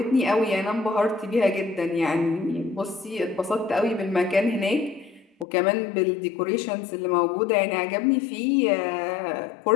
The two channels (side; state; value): right; drops out; at 5.5 s